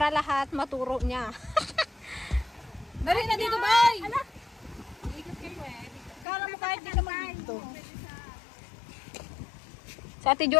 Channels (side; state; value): right; drops out; at 6.2 s